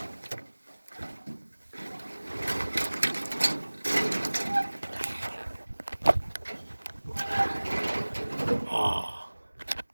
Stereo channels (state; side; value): inverted; both; correlation -1.00